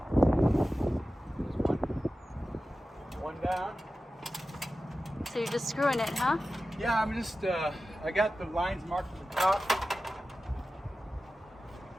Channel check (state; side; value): normal; both; correlation 0.94